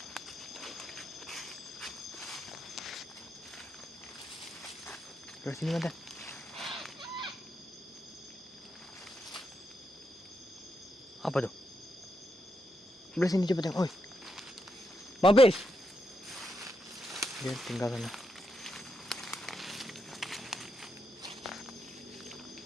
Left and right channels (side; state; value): both; normal; correlation 0.83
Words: Ke sini mantan. Apa tuh? Sebelah sini coba tengok. Oi. Mabes. Dia tinggal sana.